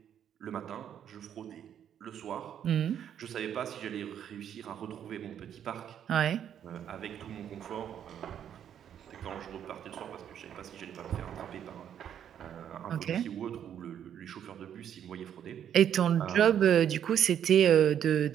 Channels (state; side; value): quieter; left; 9.4 dB